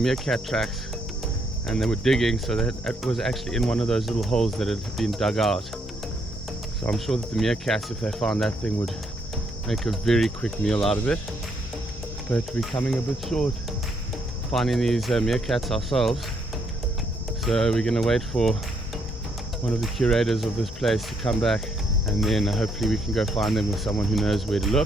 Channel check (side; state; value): both; normal; correlation 0.73